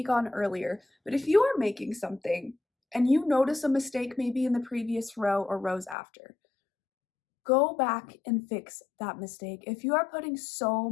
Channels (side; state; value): right; drops out; at 6.0 s